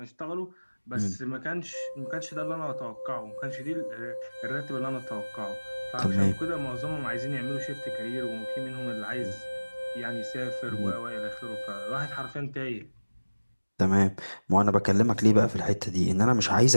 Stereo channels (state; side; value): inverted; both; correlation -1.00